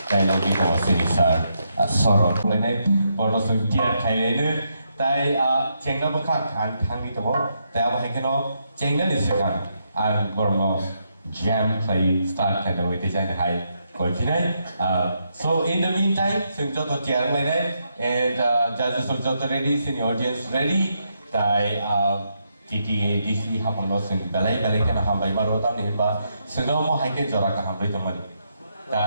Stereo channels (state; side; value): inverted; both; correlation -0.80